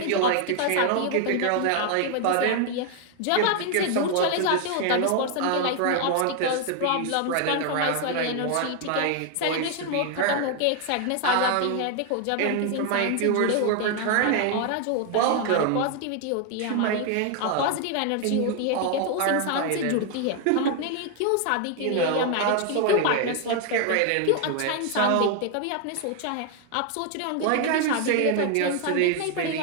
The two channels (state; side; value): different; both; correlation 0.00